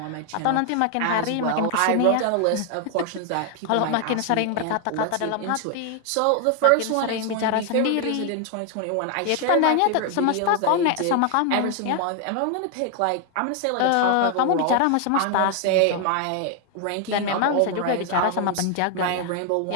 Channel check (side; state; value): both; different; correlation 0.00